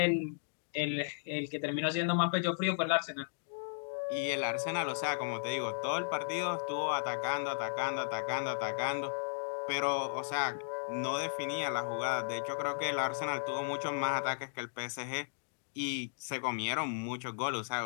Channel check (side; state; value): right; silent; digital silence